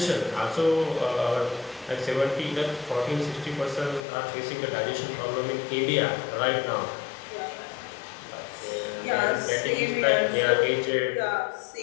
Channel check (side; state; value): right; drops out; at 4.0 s